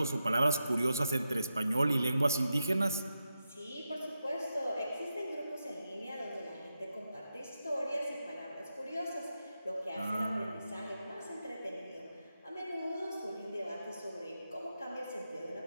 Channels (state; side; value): inverted; both; correlation -0.88